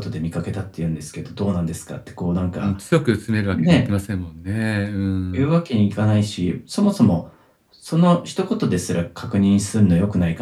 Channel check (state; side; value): identical; both; correlation 1.00